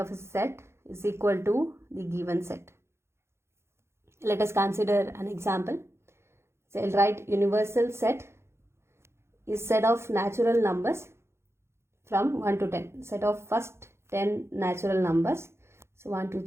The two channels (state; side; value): late; left; 0.13 ms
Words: a set is equal to the given set. Let us consider an example. So I'll write universal set is set of natural numbers from 1 to 10. Set of first 10 natural numbers. So 1, 2,